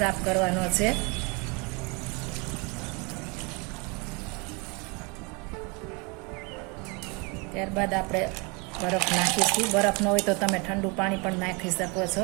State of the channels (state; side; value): quieter; left; 29.5 dB